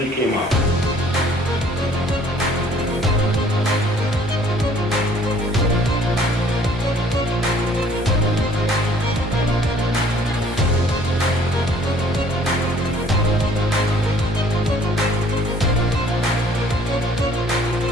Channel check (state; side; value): normal; both; correlation 0.58